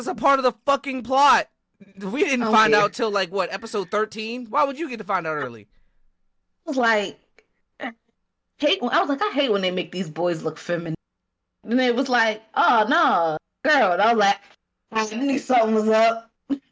a part of the fucking plot, we didn't Oh, find yeah. out till like what, episode 13? Why would you get to find out early? I was like, I hate when they make these boys look feminine. And it was like, oh no, girl. And I was like, I knew something was up.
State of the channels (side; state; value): both; identical; correlation 1.00